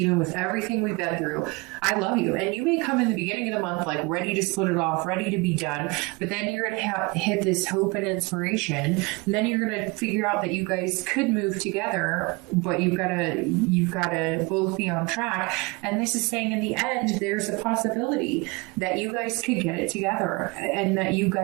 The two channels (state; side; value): quieter; left; 26.2 dB